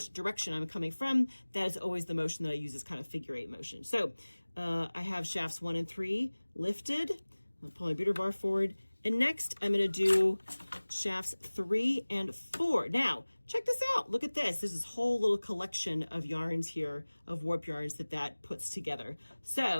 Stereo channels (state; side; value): inverted; both; correlation -1.00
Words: direction I'm coming from, that is always the motion that I use, this kind of figure 8 motion. So I have shafts 1 and 3 lifted. I'll pull my beater bar forward. And next, I'm going to do shafts 3 and 4. Now, check this out. Look at this. There's this whole little collection of yarns here, of warp yarns that puts together.